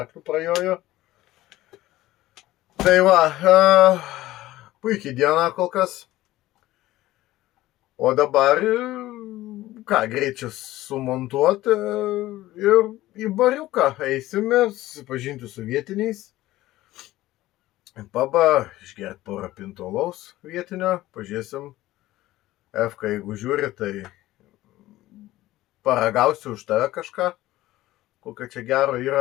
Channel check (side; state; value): right; quieter; 16.3 dB